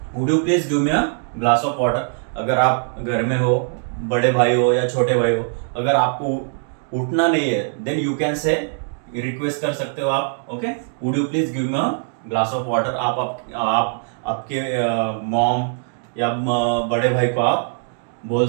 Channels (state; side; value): silent; left; 65 dB below the other